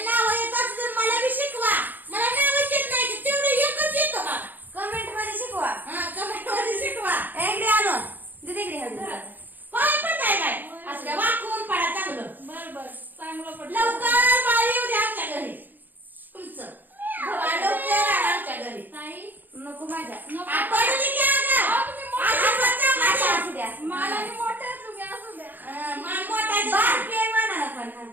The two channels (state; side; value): late; left; 0.087 ms